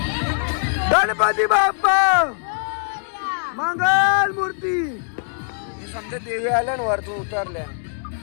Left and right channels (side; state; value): right; silent; digital silence